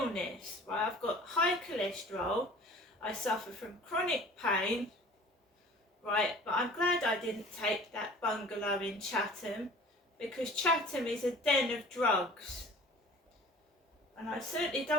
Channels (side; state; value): both; normal; correlation 0.46